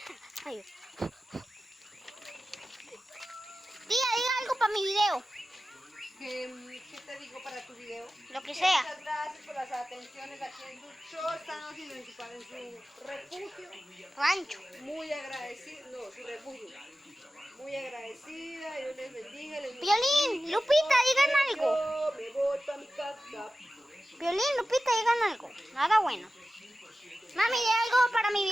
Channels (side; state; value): both; normal; correlation 0.94